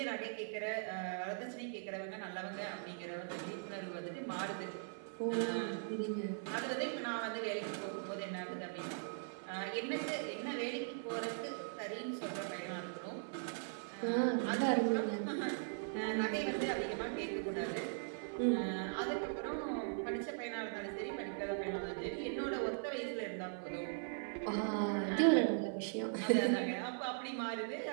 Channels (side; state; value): left; silent; 51 dB below the other